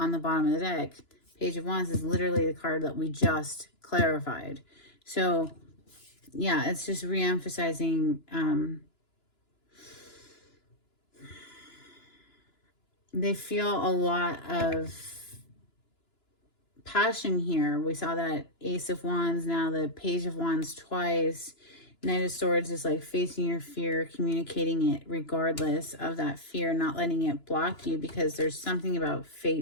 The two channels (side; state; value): right; late; 2.9 ms